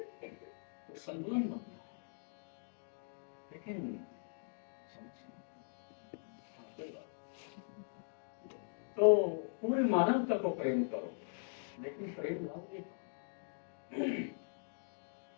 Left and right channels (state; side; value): silent; right; digital silence